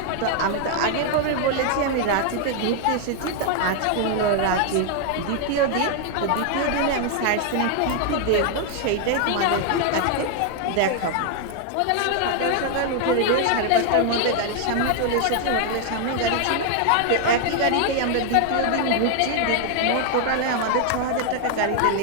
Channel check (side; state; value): both; different; correlation 0.00